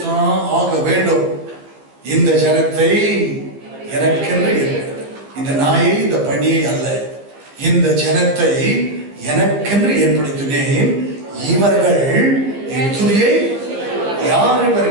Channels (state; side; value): late; left; 15 ms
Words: ஆக வேண்டும். இந்த ஜனத்தை எனக்கென்று இருக்கிறது, இந்த நாயை இந்த பணியை அல்ல, இந்த ஜனத்தை எனக்கென்று ஏற்படுத்தினேன், இவர்கள் என் துதியை. யார்